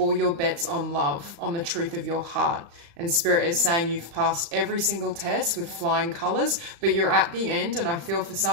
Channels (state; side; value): late; left; 35 ms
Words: your bets on love, on the truth of your heart. And Spirit is saying you've passed every single test with flying colors, but you're at the end. And I feel for